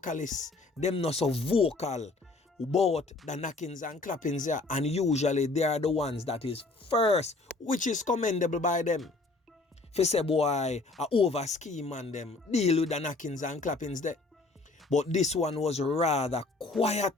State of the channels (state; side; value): quieter; right; 3.4 dB